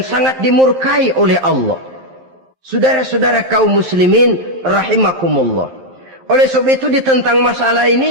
sangat dimurkai oleh Allah. Saudara-saudara kaum muslimin rahimakumullah, oleh sebab itu tentang masalah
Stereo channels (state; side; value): late; left; 11 ms